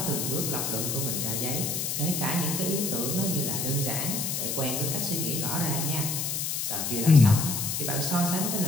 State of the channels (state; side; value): noise; left; hiss, 1 dB below the sound